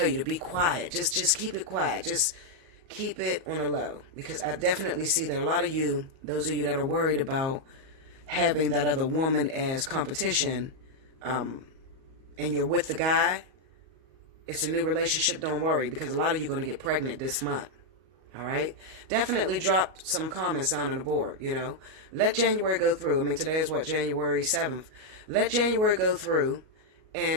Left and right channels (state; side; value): late; left; 37 ms